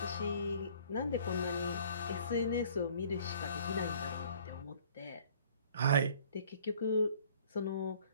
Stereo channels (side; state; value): both; inverted; correlation -0.54